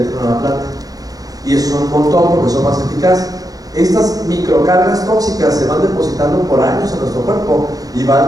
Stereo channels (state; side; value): late; left; 0.18 ms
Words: la planta. Y eso son un montón porque son más eficaces. Estas microcargas tóxicas se van depositando por años en nuestro cuerpo y van